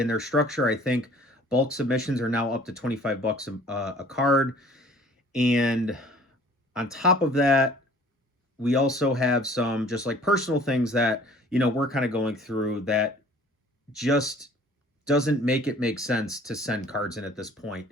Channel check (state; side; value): normal; both; correlation 0.52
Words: structure. I think bulk submissions are now up to $25 a card, and on top of that, we also have some just like personal things that we're kind of going through that just doesn't make sense to send cards in at this point.